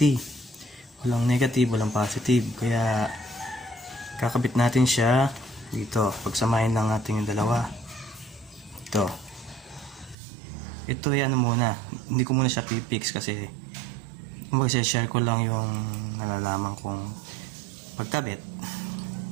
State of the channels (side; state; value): left; drops out; at 10.2 s